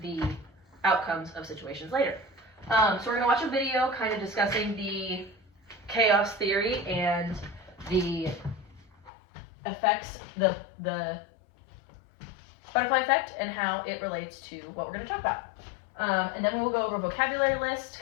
the outcomes of situations later. So we're going to watch a video kind of discussing the chaos theory and the effects, the butterfly effect, and how it relates to what we're going to talk about. And then we'll go over a vocabulary list,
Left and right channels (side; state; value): right; drops out; at 9.1 s